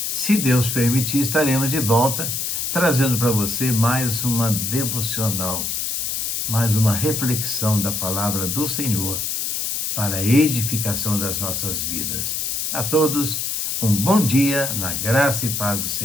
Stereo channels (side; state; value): left; noise; hiss, 1 dB below the sound